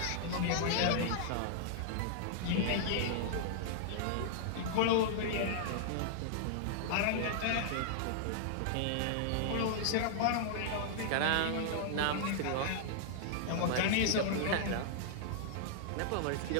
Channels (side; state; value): both; different; correlation -0.01